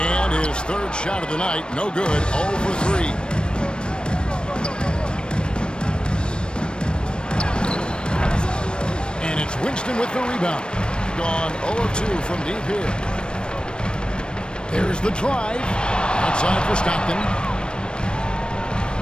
his third shot of the night, no good, 0 for 3. And it's Winston with the rebound. Gone 0 of 2 from deep here. There's the drive. Outside for Stockton.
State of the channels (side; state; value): right; late; 0.053 ms